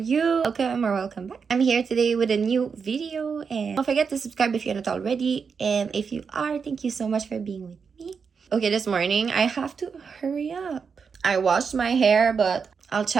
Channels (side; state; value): left; quieter; 5.8 dB